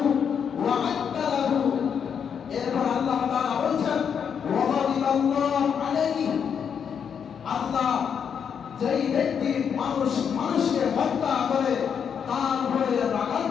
ওয়া আ'adda লাহু, এরপর আল্লাহ তাআলা বলেন ওয়ালাল্লাহু আলাইহি, আল্লাহ যেই ব্যক্তি মানুষকে হত্যা করে তার উপরে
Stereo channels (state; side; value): quieter; right; 7.4 dB